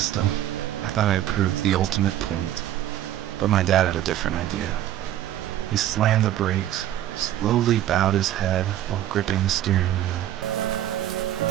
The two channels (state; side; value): quieter; left; 12.5 dB